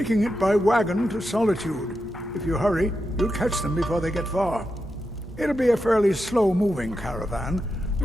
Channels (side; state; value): both; normal; correlation 0.87